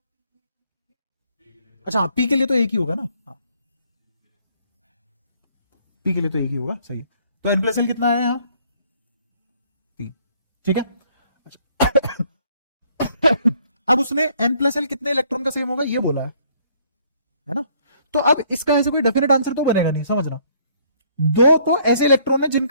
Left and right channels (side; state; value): both; inverted; correlation -0.64